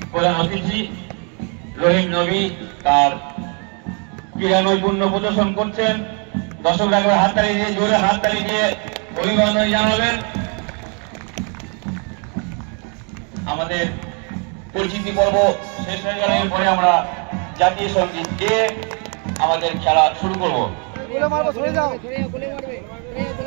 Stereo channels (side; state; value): left; quieter; 37.7 dB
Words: প্রধান অতিথি রহিম নবী তার ক্রীড়া নৈপুণ্য প্রদর্শন করছেন। দর্শকরা একবার হাততালি দিয়ে, জোরে হাততালি দিয়ে অভিনন্দন জানাবেন। আমাদের পরিচিতি পর্ব শেষ হয়ে গেলে পরে আমরা জাতীয় সঙ্গীত গেয়ে আমাদের খেলা শুরু করব।